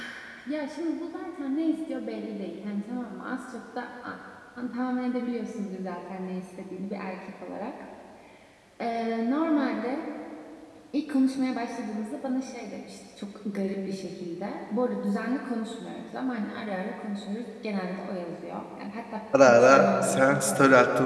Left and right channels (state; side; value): identical; both; correlation 1.00